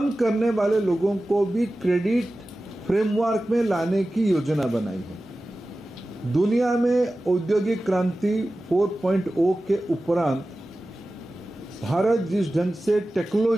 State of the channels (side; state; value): both; normal; correlation 0.95